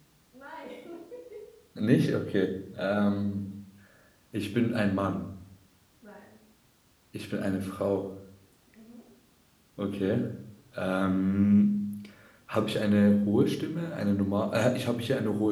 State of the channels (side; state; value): both; identical; correlation 1.00